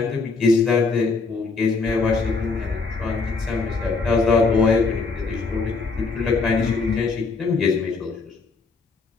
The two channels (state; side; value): quieter; right; 4.2 dB